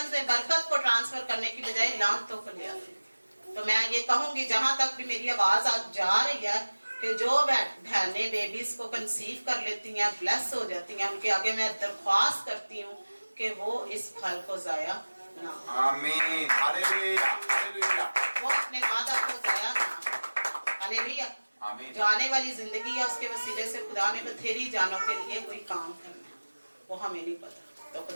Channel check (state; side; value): inverted; both; correlation -1.00